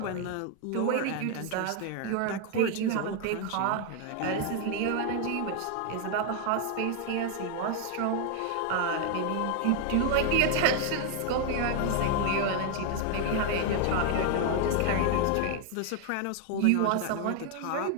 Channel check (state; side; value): different; both; correlation 0.00